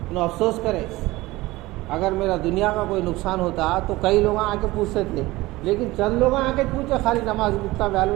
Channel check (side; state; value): left; quieter; 19.4 dB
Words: انہوں افسوس کرے. اگر میرا دنیا کا کوئی نقصان ہوتا تو کئی لوگ آ کے پوچھتے تھے، لیکن چند لوگ آ کے پوچھے خالی نماز اتنا